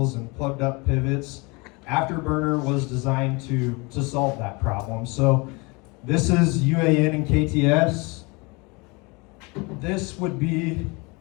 and plugged up pivots. Afterburner was designed to solve that problem. So this is UAN and KTS. This would be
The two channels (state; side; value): quieter; right; 27.7 dB